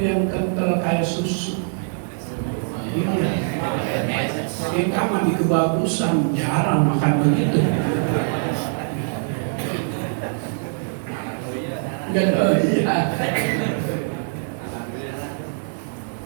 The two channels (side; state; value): left; silent; digital silence